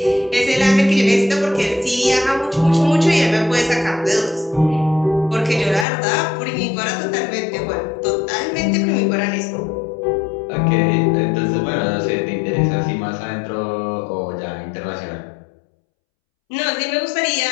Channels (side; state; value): right; drops out; at 5.9 s